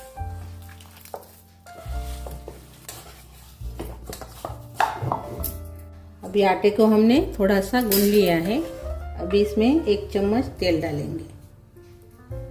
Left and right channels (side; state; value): both; identical; correlation 1.00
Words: अभी आटे को हमने थोड़ा सा गूंद लिया है। अभी इसमें 1 चम्मच तेल डालेंगे